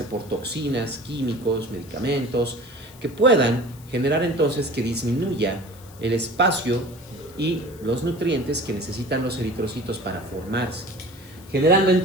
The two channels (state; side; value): noise; left; hiss, 23 dB below the sound